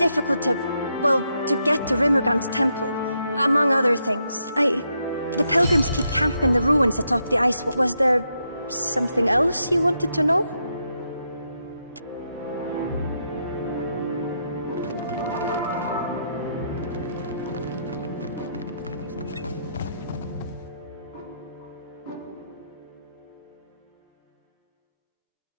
to get to Rimmergant's temple, among other things. The pilgrims keep camp in the ruins atop the ice. Was there something else you wanted to know?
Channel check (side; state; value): both; inverted; correlation -0.80